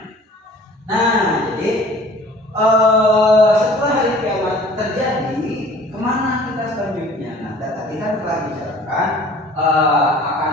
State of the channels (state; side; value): normal; both; correlation 0.49